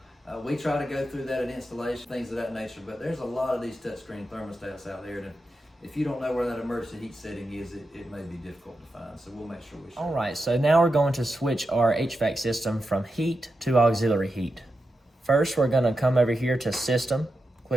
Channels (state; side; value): normal; both; correlation 0.89